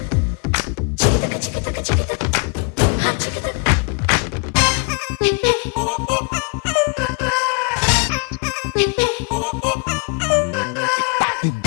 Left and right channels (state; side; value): quieter; right; 35.0 dB